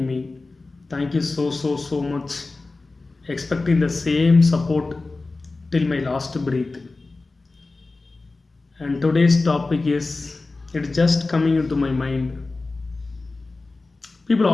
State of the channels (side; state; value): right; quieter; 3.5 dB